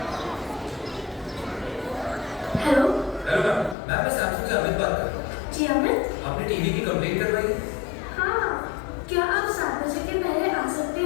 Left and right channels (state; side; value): drops out; right; at 3.8 s